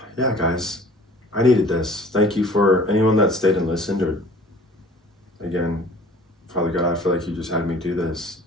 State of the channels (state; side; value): normal; both; correlation 0.49